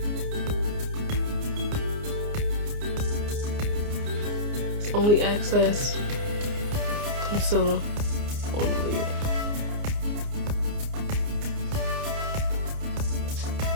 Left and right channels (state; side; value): late; left; 29 ms